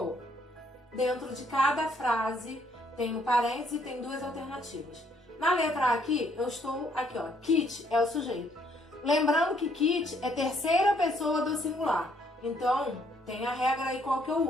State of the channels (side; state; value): both; normal; correlation 0.67